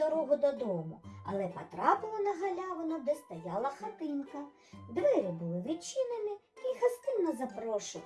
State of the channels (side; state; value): both; identical; correlation 1.00